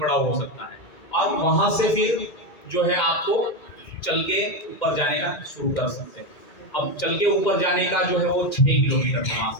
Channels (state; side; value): late; right; 2.1 ms